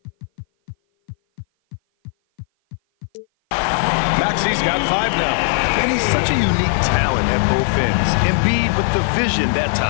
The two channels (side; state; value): right; silent; 57 dB below the other